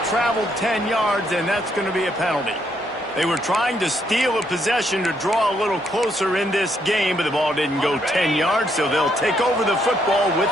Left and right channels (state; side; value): normal; both; correlation 0.74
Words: traveled 10 yards, and that's going to be a penalty. They were trying to steal a possession to draw a little closer in this game, but the ball didn't go 10 yards, so they'll take over the football with